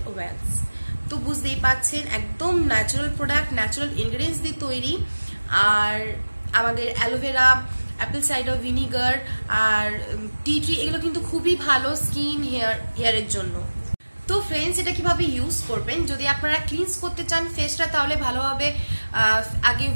oils. তো বুঝতেই পাচ্ছেন একদম ন্যাচারাল প্রোডাক্ট, ন্যাচারাল ইনগ্রিডিয়েন্টস দিয়ে তৈরি। আর আমাদের অ্যালোভেরা, অ্যাপল সাইডার ভিনিগার আর টি ট্রি এগুলো কিন্তু খুবই ভালো স্কিন, হেয়ারের জন্য। তো ফ্রেন্ডস এটা কিভাবে ইউজ করবেন, যদি আপনারা ক্লিনস করতে চান ফেসটা, তাহলে ভালোভাবে আগে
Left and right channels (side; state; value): both; inverted; correlation -1.00